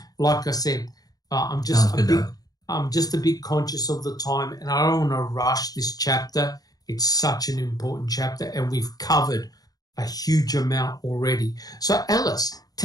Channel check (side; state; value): right; late; 0.18 ms